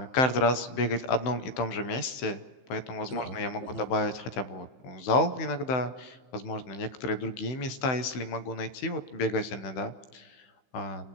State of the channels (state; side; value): late; right; 16 ms